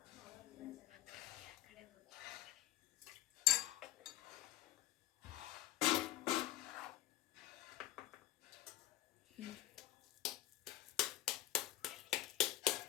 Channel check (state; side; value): quieter; right; 14.5 dB